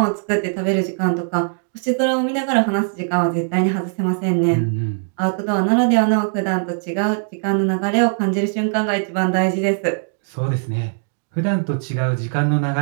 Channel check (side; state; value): left; silent; 66 dB below the other